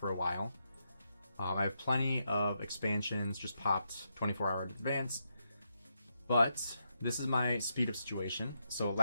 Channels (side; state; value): both; inverted; correlation -0.83